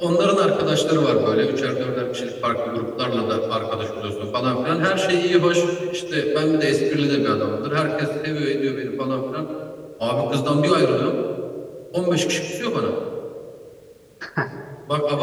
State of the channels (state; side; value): identical; both; correlation 1.00